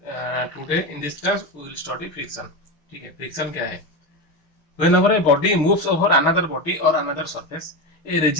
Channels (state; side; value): late; right; 6.2 ms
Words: today in this class we will study friction. ठीक है, friction क्या है? Whenever a body moves over another body or another surface, a